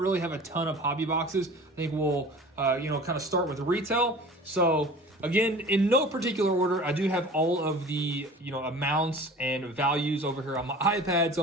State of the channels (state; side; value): normal; both; correlation 0.41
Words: have a ton of hobby boxes. I think we'll kind of start with retail. So again, in no particular order, I do have all of the amounts and values over here on my iPad, so